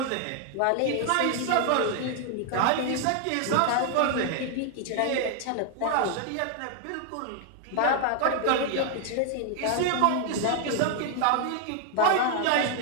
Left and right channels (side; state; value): both; different; correlation 0.00